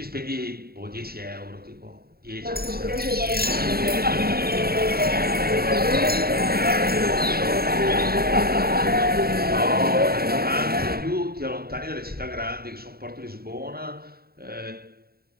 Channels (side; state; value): left; late; 0.45 ms